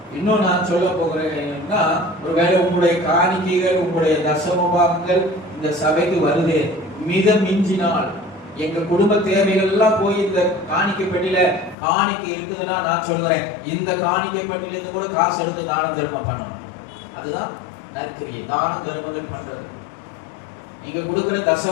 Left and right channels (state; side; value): drops out; right; at 11.8 s